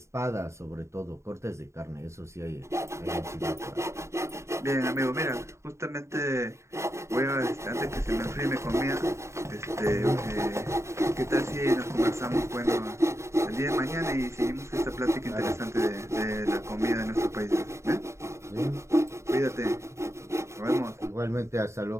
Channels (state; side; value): late; left; 0.14 ms